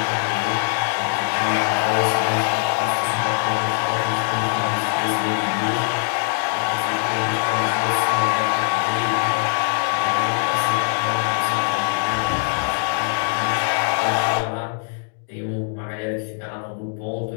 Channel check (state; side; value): silent; right; digital silence